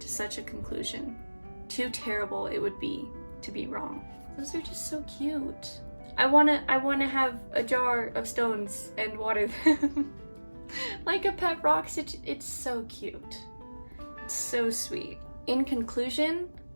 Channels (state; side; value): inverted; both; correlation -1.00